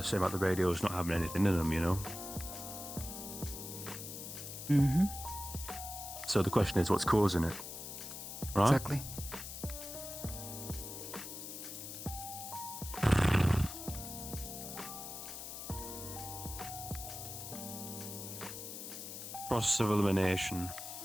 saying about the radios not having anything in them, you know? Mm-hmm. So the question is, what's causing it? Right? Exactly. Process of elimination.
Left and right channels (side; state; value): left; noise; hiss, 9 dB below the sound